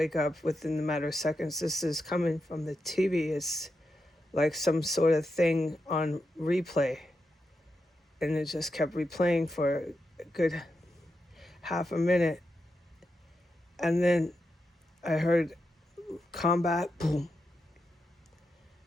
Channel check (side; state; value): both; normal; correlation 0.86